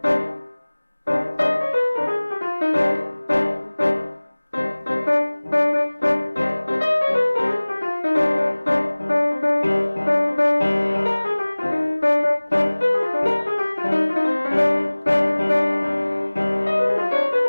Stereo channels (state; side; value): inverted; both; correlation -1.00